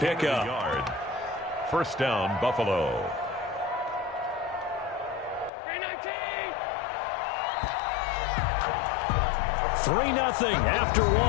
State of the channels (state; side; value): drops out; right; at 5.5 s